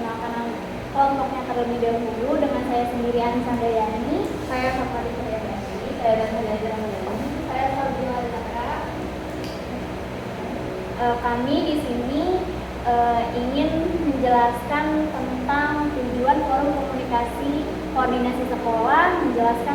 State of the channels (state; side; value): identical; both; correlation 1.00